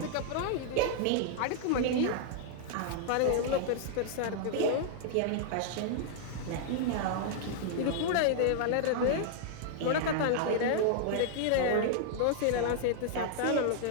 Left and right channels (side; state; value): both; different; correlation -0.01